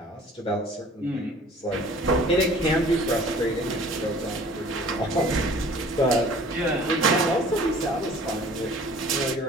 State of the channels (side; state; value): both; normal; correlation 0.49